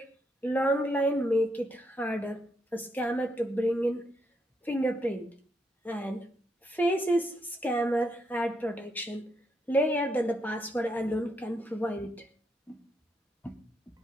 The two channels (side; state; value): both; normal; correlation 0.78